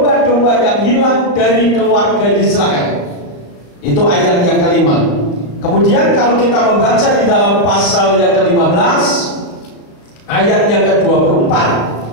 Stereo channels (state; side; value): late; right; 35 ms